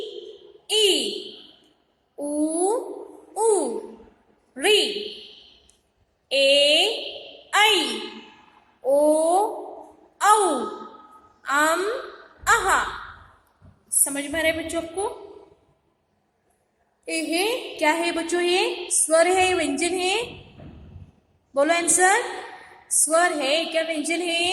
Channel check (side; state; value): both; identical; correlation 1.00